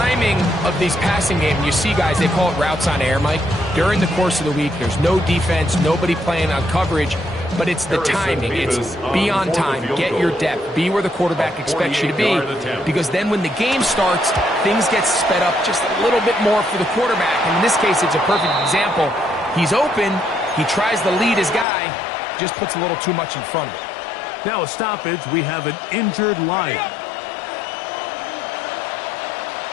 of these passing games, you see guys, they call it routes on air, Mike. During the course of the week, there's no defense, nobody playing on coverage, but it's the timing. It's be on time, get your depth, be where the quarterback expects you to be, because then when the game starts, things get sped up just a little bit more for the quarterback. And in this case, it's a perfect example. He's open, he tries to lead his guy, just puts a little too much in front of him. Now a stoppage, we have an injured Lion.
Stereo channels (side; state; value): right; drops out; at 21.7 s